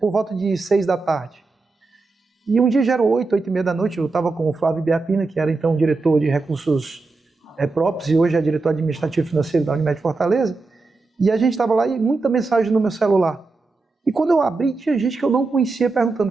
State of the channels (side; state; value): left; quieter; 3.7 dB